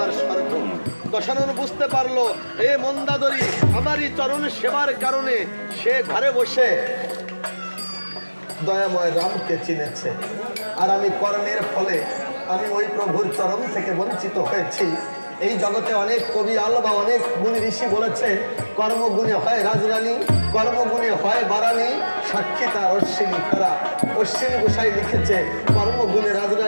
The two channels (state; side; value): inverted; both; correlation -1.00